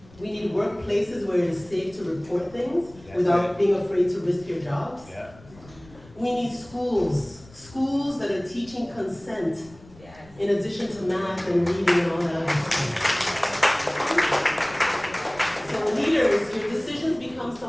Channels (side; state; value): left; noise; rumble, 23 dB below the sound